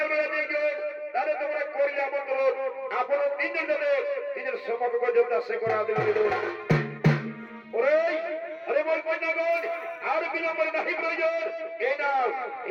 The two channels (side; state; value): both; identical; correlation 1.00